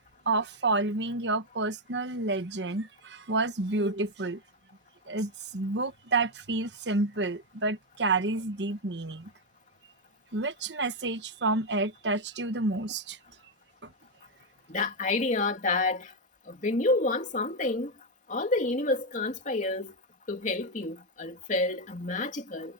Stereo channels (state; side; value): normal; both; correlation 0.03